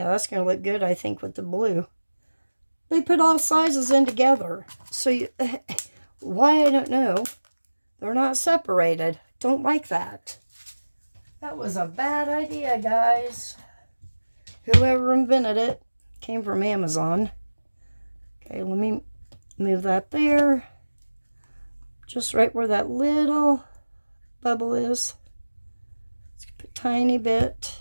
that's going to look good, I think, with the blue. They put all sizes in together. So, you, why, I don't know. They're not separated. Don't like that. That was a bad idea, guys. Whoever invented it came from Amazon. Okay, let me move that there. Just right where that little bubble is. Let's put a tiny bit.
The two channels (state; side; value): inverted; both; correlation -1.00